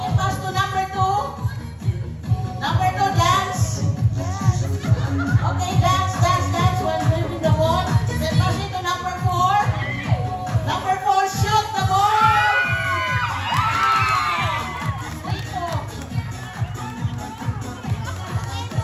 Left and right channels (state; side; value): identical; both; correlation 1.00